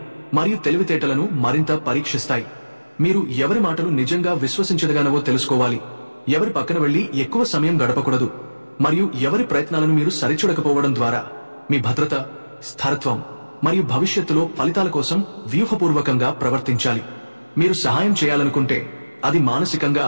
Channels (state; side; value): inverted; both; correlation -1.00